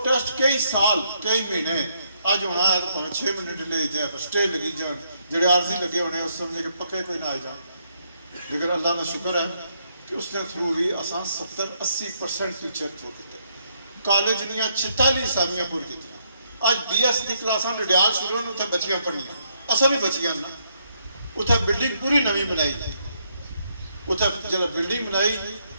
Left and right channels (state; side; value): inverted; both; correlation -0.75